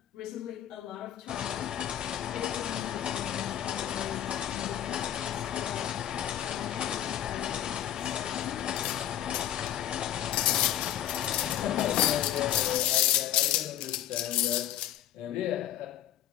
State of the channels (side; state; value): right; quieter; 11.6 dB